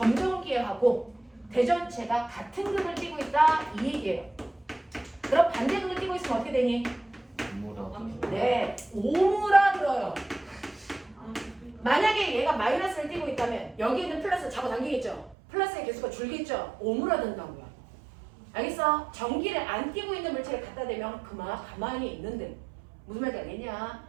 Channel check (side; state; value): left; drops out; at 15.4 s